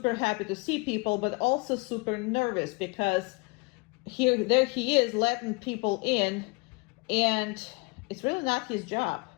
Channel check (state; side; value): quieter; right; 28.5 dB